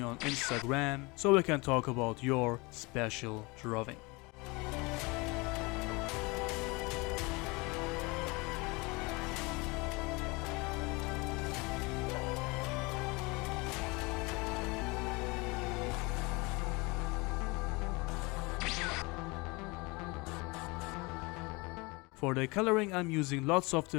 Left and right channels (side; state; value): right; quieter; 25.9 dB